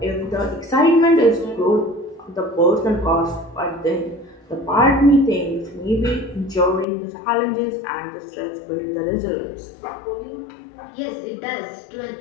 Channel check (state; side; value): drops out; right; at 6.9 s